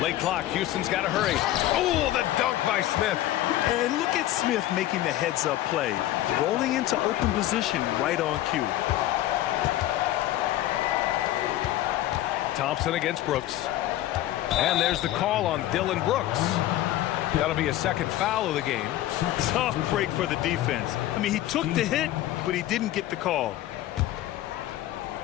clock, Houston's got to hurry. Oh, the dunk by Smith. And look at Smith making the heads-up play. Rolling into open position right on cue. Thompson against Brooks. And there's the call on Dylan Brooks. That'll be a second foul of the game. Tough break for the defense. I mean, he took the hit, but he didn't get the call.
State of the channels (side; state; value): right; quieter; 14.3 dB